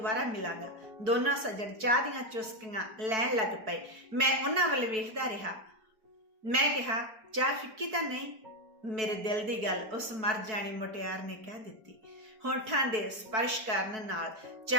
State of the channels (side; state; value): left; late; 4.6 ms